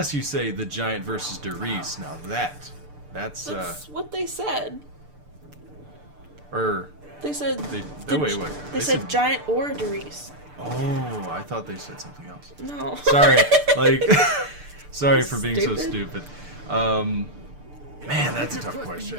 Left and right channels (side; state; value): left; late; 6.8 ms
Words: you say The Giant versus Derice. Now that's That's what they said. or They said. they the- wait. They said Giant or Derice. Oh, I thought they said something else. No. Sorry, like, sorry for being so Stupid. stupid. Man, that's a tough question.